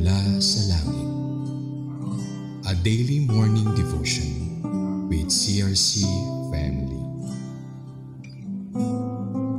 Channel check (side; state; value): both; identical; correlation 1.00